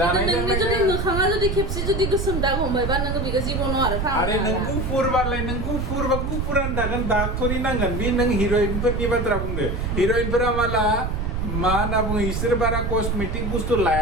जुदि मोखाङा जुदि खेबसे जुदि गोसोम दाग हमबायबा नोङो बेखौ जिबनाव आरो आरो नों गुफुरबालाय नों गुफुरबा गुफुरानो थागोन दाग थरि नांगोन बे नों हिर'इनफोरनि बाथ्रा बुंदो हिर'इनफोरा माला मा होनना बुङो इसोर बारा कस्मेटिक बुस्थु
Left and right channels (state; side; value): noise; right; rumble, 2 dB below the sound